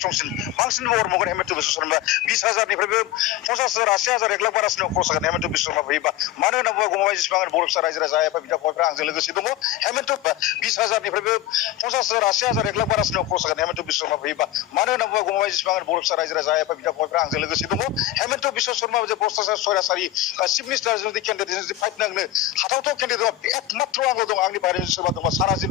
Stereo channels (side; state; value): right; quieter; 12.9 dB